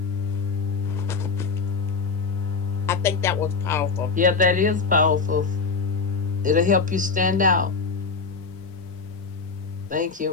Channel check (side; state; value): right; quieter; 4.7 dB